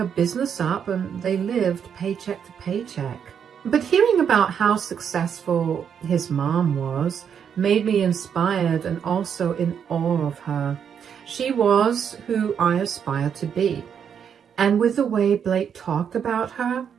business up and they lived paycheck to paycheck. But hearing about how successful his mom was made me inspired and also in awe of her. She was who I aspired to be. And with the way Blake talked about her,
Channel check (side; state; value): left; quieter; 7.8 dB